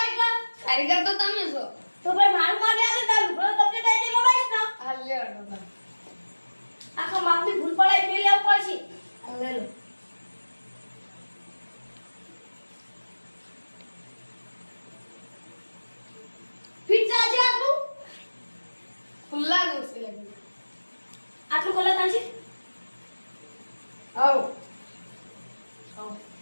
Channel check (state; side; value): inverted; both; correlation -1.00